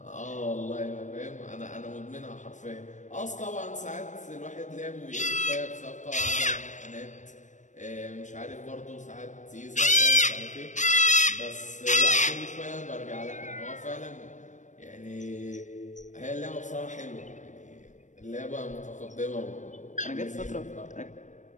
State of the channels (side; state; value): right; late; 0.35 ms